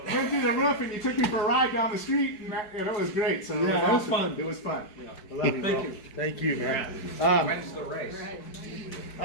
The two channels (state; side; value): late; right; 4.7 ms